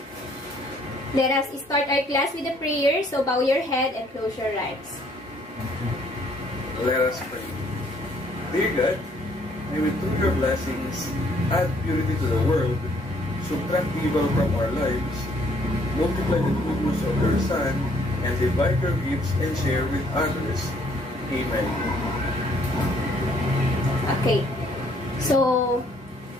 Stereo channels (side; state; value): both; normal; correlation 0.64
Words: Let us start our class with a prayer, so bow your head and close your eyes. Let us pray. Dear God, may we through your blessings add purity to the world, subtract evil from our lives, multiply the goodness of your Son, and divide your gifts and share with others. Amen. Okay. So,